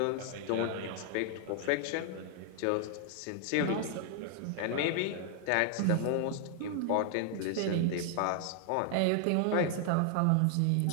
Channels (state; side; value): different; both; correlation 0.00